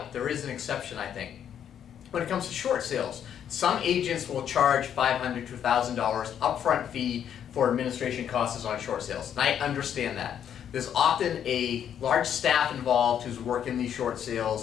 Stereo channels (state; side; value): quieter; right; 9.2 dB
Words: there is an exception, I think. When it comes to short sales, some agents will charge $500 to $1,000 upfront fee for administration costs on short sales. And I understand that. There's often a large staff involved who's working these short